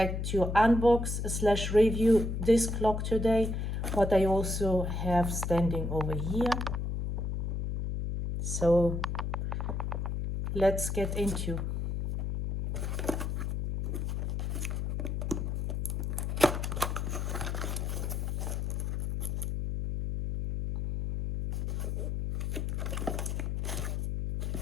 to unbox slash review this clock today, what I also have standing over here. So let's get into.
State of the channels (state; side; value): noise; left; hum, 2 dB below the sound